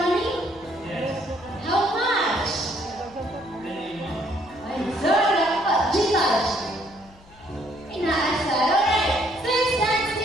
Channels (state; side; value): noise; left; hum, 25 dB below the sound